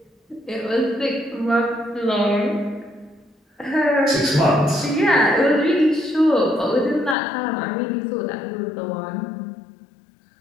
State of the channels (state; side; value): drops out; right; at 7.2 s